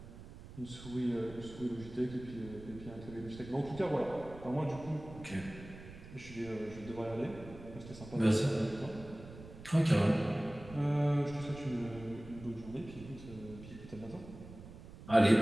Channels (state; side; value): noise; right; rumble, 15 dB below the sound